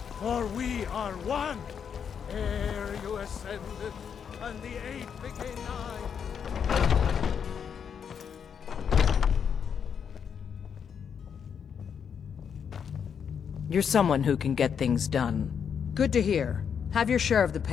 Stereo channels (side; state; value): right; quieter; 7.3 dB